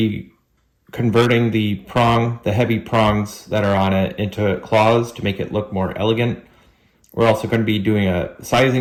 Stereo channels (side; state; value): both; identical; correlation 1.00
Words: converting the heavy prongs that are on it into claws to make it look more elegant. We're also going to be doing a